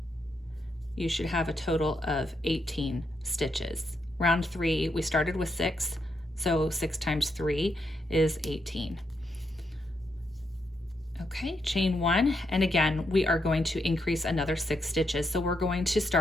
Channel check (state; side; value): normal; both; correlation 0.80